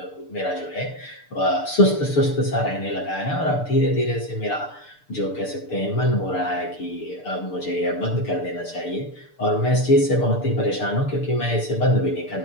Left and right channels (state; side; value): late; right; 6.7 ms